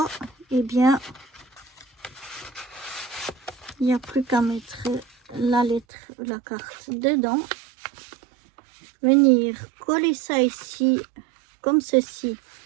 eh bien, il n'y a plus qu'à mettre la lettre, la carte dedans. Venir coller ça ici, comme ceci,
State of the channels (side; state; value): left; drops out; at 5.9 s